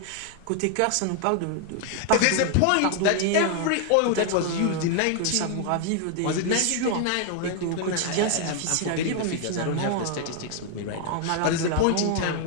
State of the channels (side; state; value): both; different; correlation 0.00